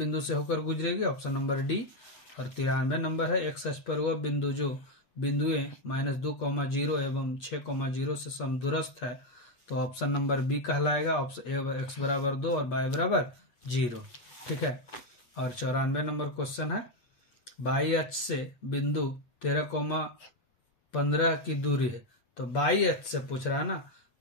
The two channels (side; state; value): right; late; 8.4 ms